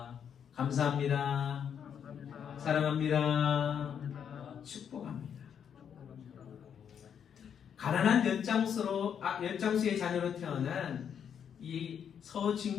감사합니다. 사랑합니다. 축복합니다. 가난한 엿장수의 자녀로 태어난 이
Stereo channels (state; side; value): quieter; right; 8.1 dB